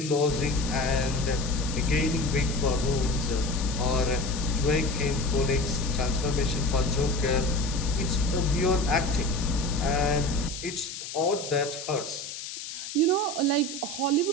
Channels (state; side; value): noise; left; hiss, 9 dB below the sound